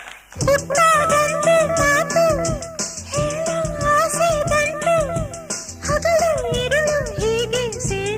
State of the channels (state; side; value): identical; both; correlation 1.00